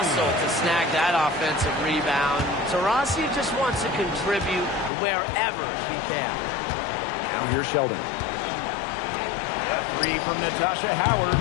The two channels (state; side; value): drops out; right; at 4.9 s